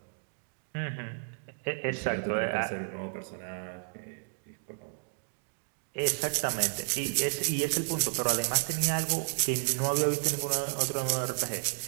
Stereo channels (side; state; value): left; silent; digital silence